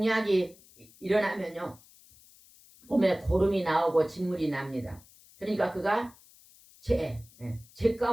일어나면요 몸에 고름이 나오고 진물이 납니다. 그러니까 그가 제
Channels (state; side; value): noise; left; hiss, 25 dB below the sound